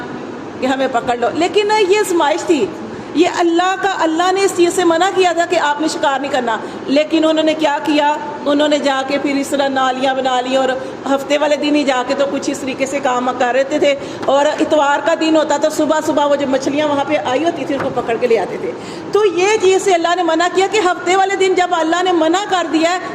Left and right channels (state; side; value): identical; both; correlation 1.00